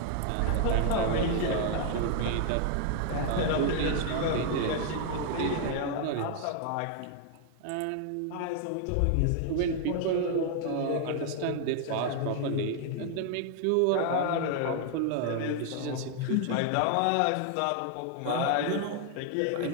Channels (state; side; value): different; both; correlation 0.00